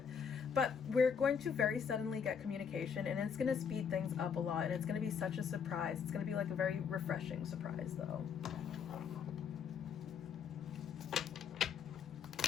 But we're going to very suddenly get communication, and it's going to speed things up a lot, and it's going to be such a surprise. It's going to be like a very refreshing surprise, though.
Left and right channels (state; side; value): quieter; right; 6.8 dB